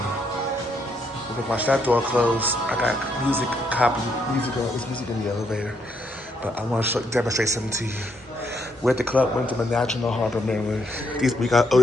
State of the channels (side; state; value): both; normal; correlation 0.75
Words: We're gonna watch that door close. I got music, it's music in the elevator. But I want to demonstrate something to you. We're at the club Wyndham in National Harbor, Maryland. We got